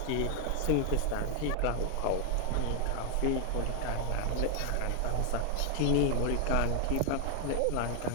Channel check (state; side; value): different; both; correlation 0.00